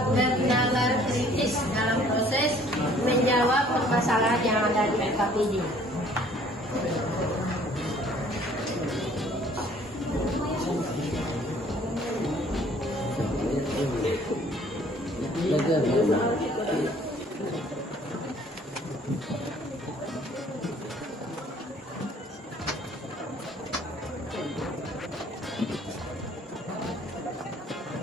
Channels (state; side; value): normal; both; correlation 0.56